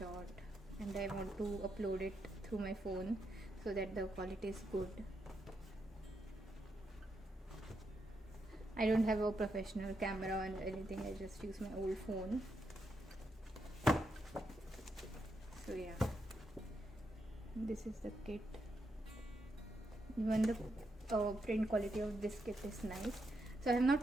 and I want to upload it through my phone so that the quality is good. I don't have a professional camera and anything, I just use my old phone. So yeah, this is the kit. Even the print quality of this kit is nice. So I have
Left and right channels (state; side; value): normal; both; correlation 0.82